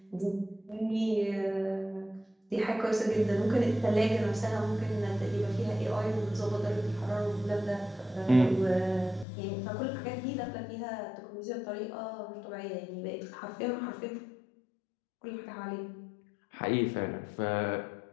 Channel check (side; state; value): right; drops out; at 9.2 s